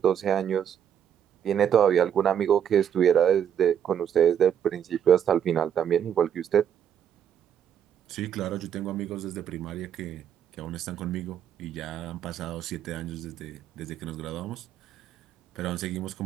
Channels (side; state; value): left; quieter; 9.1 dB